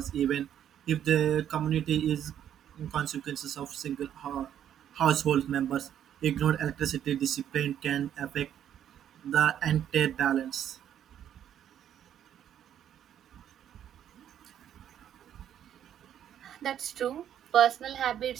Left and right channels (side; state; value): left; quieter; 10.1 dB